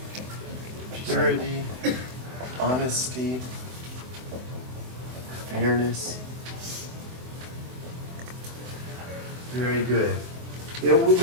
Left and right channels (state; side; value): late; left; 24 ms